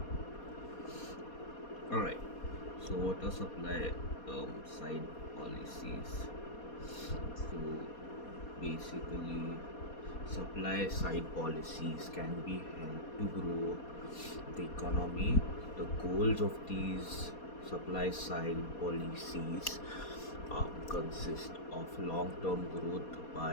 All right. So what are supply side policies? So basically, supply side policies can be helped to grow the economy. The goals of these supply side policies consist of long-term growth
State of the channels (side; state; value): right; late; 4.2 ms